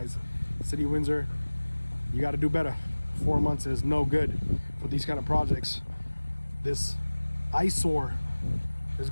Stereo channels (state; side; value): inverted; both; correlation -1.00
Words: City of Windsor, you got to do better. 4 months is no good for these kind of projects. This eyesore is